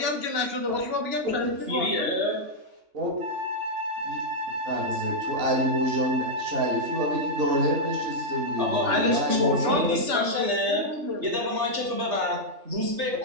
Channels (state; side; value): late; left; 3.3 ms